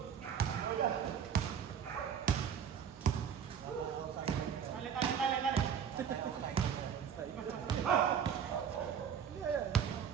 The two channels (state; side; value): quieter; left; 7.8 dB